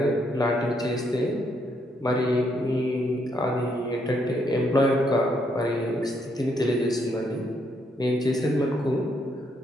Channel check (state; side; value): normal; both; correlation 0.74